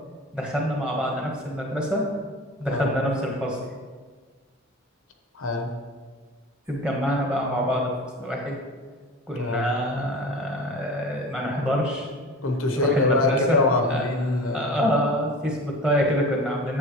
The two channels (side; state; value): both; normal; correlation 0.37